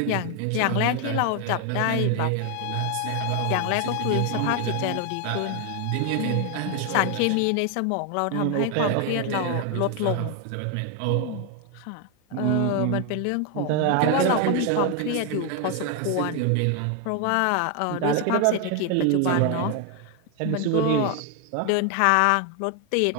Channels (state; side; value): different; both; correlation 0.01